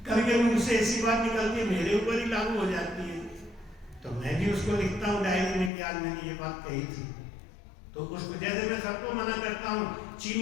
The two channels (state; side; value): drops out; right; at 5.7 s